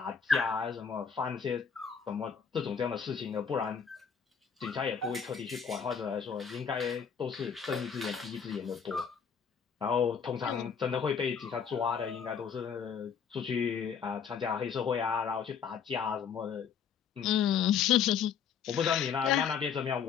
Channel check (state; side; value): quieter; right; 7.0 dB